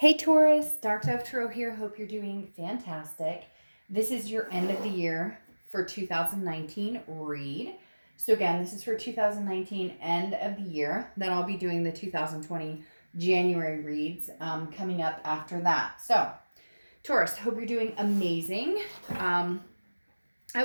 Taurus, Dark Dove Tarot here. Hope you're doing fantastic. This is your end of the year for 2019 read. So again, this is for 2019 end of the year. Then I'll be doing the 2020 January reads coming up after that. So Taurus, hope you're doing amazing. I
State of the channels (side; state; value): both; inverted; correlation -1.00